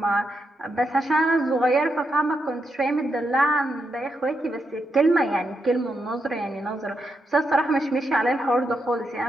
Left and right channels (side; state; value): both; normal; correlation 0.83